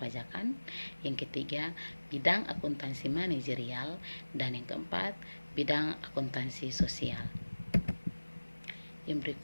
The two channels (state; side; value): inverted; both; correlation -1.00